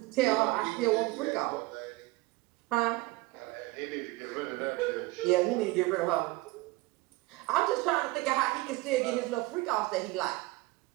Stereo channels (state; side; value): quieter; left; 20.9 dB